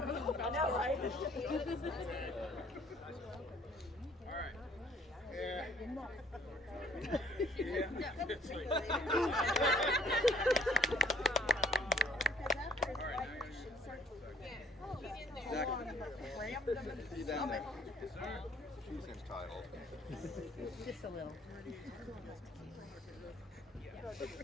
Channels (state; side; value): normal; both; correlation 0.59